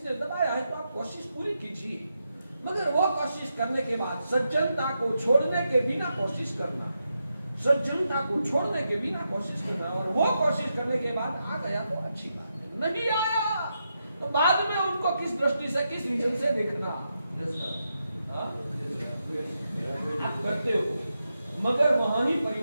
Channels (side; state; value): both; inverted; correlation -0.85